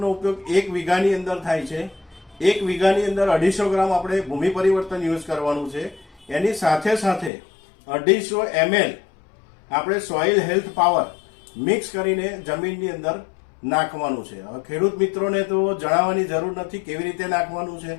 ઉપયોગ 1 વીઘાની અંદર થાય છે. 1 વીઘાની અંદર 250 ગ્રામ આપણે ભૂમિ પરિવર્તન યુઝ કરવાનું છે. એની સાથે સાથે 250 ml આપણે સોઇલ હેલ્થ પાવર મિક્સ કરીને જમીનની અંદર નાખવાનું છે. હવે ખેડૂત મિત્રોને તો જણાવવાની જરૂર નથી કેવી રીતે નાખવાનું છે.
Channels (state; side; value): drops out; right; at 7.3 s